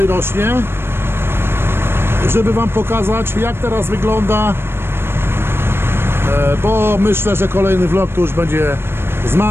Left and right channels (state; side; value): late; left; 0.11 ms